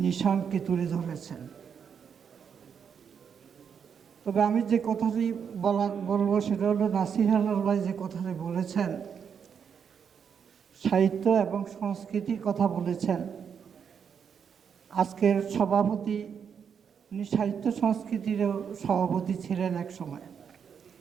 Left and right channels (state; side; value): quieter; left; 7.2 dB